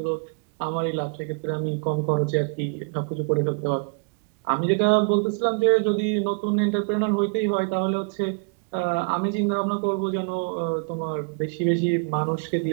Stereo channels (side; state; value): left; quieter; 37.4 dB